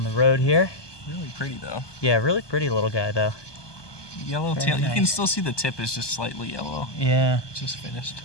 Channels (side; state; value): right; late; 1.2 ms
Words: the road here. Really pretty though. Yeah, really pretty little guy though. Yellow Very tail. nice. You can still see the tip is just slightly yellow. Yeah. Just finished.